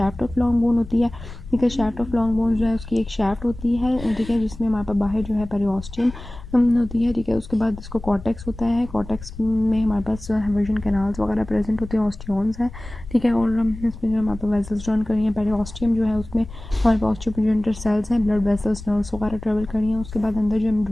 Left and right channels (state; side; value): noise; left; rumble, 14 dB below the sound